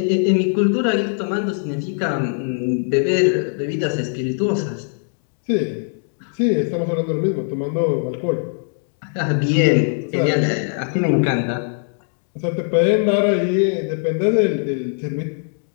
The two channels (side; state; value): right; silent; digital silence